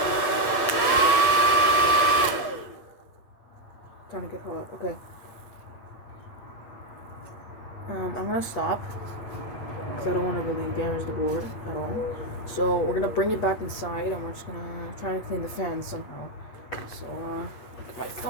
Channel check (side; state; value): right; late; 8.5 ms